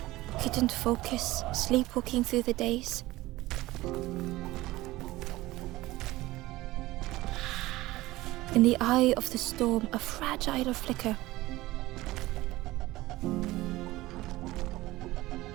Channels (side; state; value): left; quieter; 18.2 dB